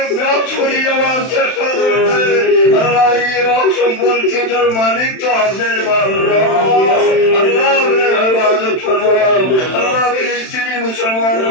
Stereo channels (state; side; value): late; right; 31 ms